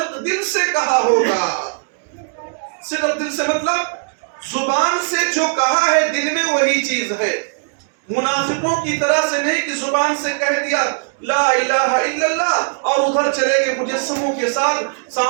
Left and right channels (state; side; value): silent; left; digital silence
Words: دل سے کہا ہوگا. صدق دل سے مطلب زبان سے جو کہا ہے دل میں وہی چیز ہے. منافقوں کی طرح سے نہیں کہ زبان سے کہہ دیا لا الہ الا اللہ اور ادھر چلے گئے مجسموں کے ساتھ